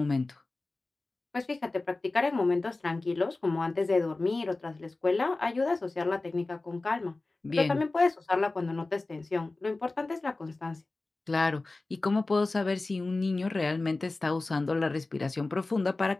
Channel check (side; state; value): right; quieter; 3.2 dB